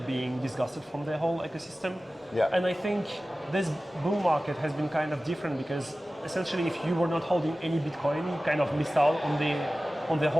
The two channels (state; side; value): normal; both; correlation 0.96